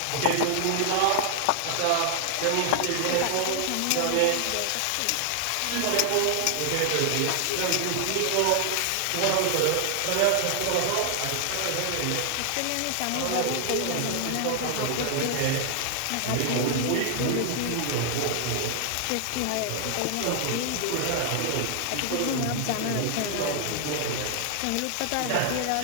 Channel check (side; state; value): both; different; correlation 0.00